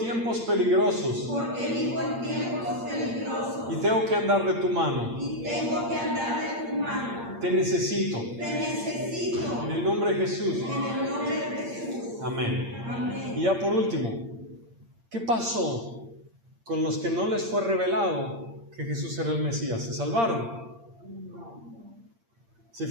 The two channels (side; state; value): left; late; 8.7 ms